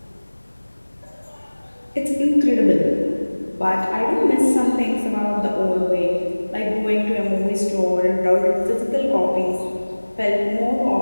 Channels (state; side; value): inverted; both; correlation -1.00